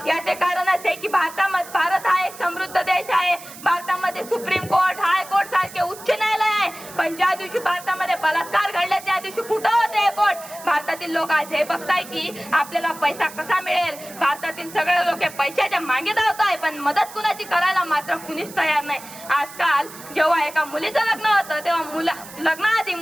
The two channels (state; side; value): noise; right; hiss, 16 dB below the sound